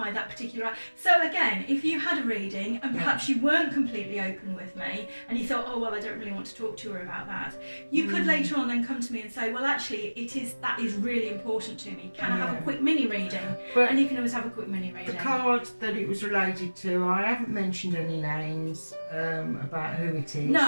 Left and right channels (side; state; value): both; inverted; correlation -1.00